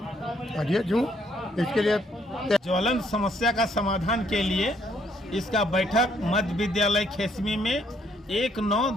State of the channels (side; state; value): both; normal; correlation 0.69